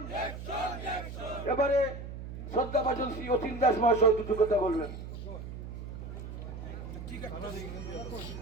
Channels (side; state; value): right; noise; hum, 9 dB below the sound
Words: এবারে শ্রদ্ধাভাজন শ্রী অতীন দাস মহাশয় দুটো কথা বলবেন।